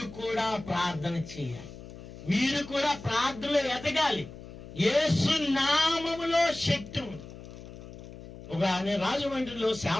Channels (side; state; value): left; noise; hum, 15 dB below the sound